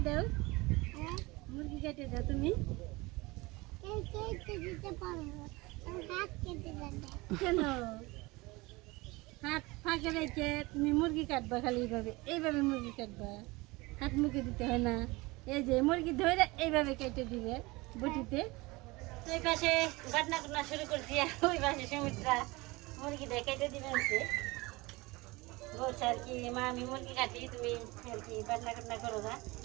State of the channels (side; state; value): left; quieter; 23.0 dB